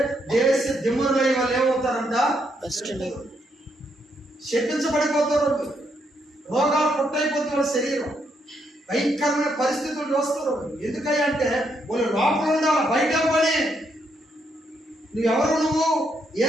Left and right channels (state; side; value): normal; both; correlation 0.76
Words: దేశ దిమ్మరులై వాళ్ళు ఏమవుతారంట? శపించబడిపోతారు. రోగాలు పుట్టయిపోతుంది వాళ్ళ శరీరం. భయంకరమైన పరిస్థితులు చూస్తారు. ఎందుకయ్యా అంటే వాళ్ళు లోపల ఉండాలి, బయట పని. నువ్వు